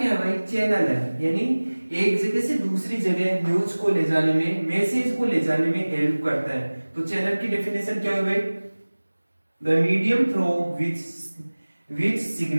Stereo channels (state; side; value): inverted; both; correlation -1.00